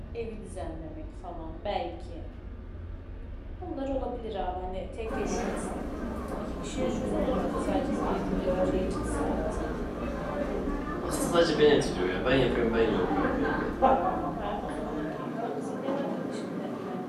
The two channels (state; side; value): identical; both; correlation 1.00